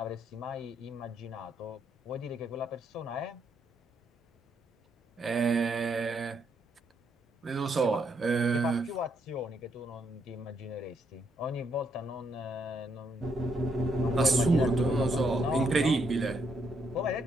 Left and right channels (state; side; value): normal; both; correlation 0.75